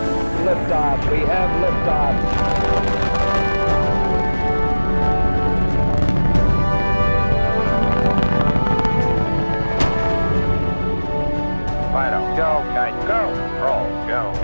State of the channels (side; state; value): both; inverted; correlation -1.00